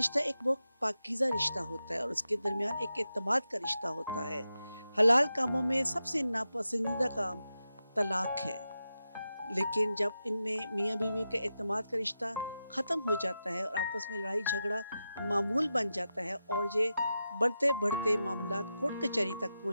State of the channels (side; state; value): both; inverted; correlation -0.90